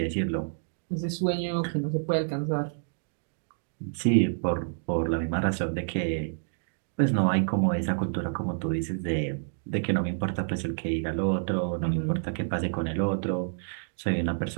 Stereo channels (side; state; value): left; silent; digital silence